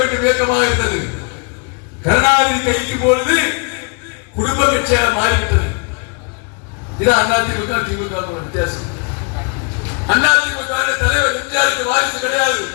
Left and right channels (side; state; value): right; quieter; 36.0 dB